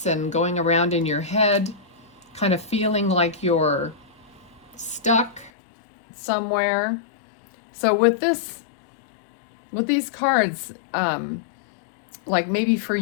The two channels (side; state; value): right; drops out; at 5.5 s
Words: and going around in your head, kind of feeling like you're stuck somewhere. So with these cards, like maybe for